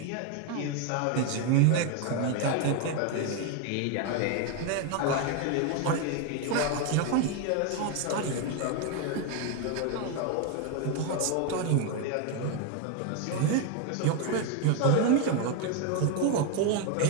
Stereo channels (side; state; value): both; different; correlation 0.01